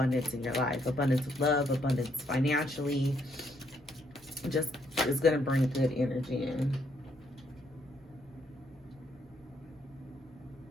in your life. Abundance of love, abundance financially. Just is going to bring good energy in.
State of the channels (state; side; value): normal; both; correlation 0.72